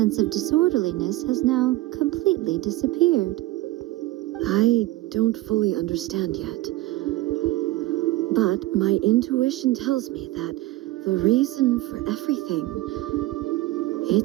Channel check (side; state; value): left; quieter; 17.8 dB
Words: of disorderliness has now completely disappeared. I don't fully understand yet. But my intuition tells me that the reason for everything,